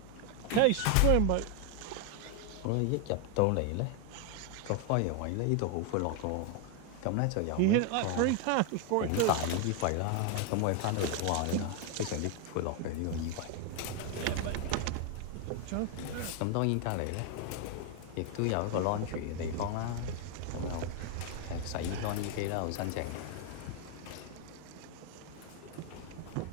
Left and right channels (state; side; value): different; both; correlation 0.01